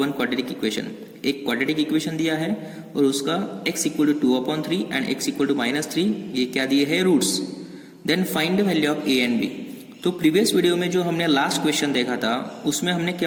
quadratic equation. एक क्वाड्रेटिक इक्वेशन दिया है और उसका x equal to 2/3 and x equal to -3 ये क्या दिए है, roots. Then find the value of a and b। तो प्रीवियस वीडियो में जो हमने लास्ट क्वेश्चन देखा था उसमें हमने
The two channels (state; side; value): identical; both; correlation 1.00